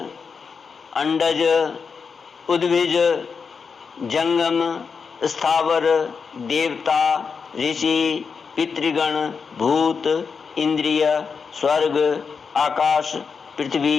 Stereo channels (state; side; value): quieter; right; 5.6 dB